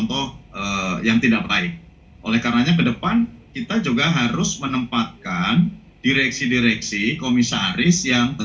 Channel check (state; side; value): identical; both; correlation 1.00